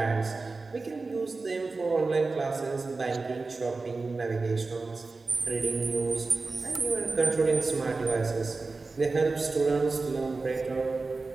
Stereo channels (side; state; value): left; quieter; 3.8 dB